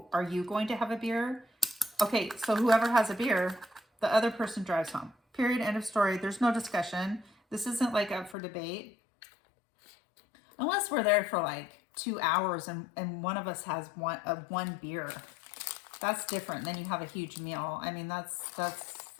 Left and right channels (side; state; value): right; drops out; at 8.3 s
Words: are you going to have a beer? Okay, so whoever has a beer, the other person drives home. Period. End of story. There's no discussion. This isn't like up for debate. Unless we're there for like 2 hours and one of us has one beer. That's different. Then you have a huge meal. I mean, that's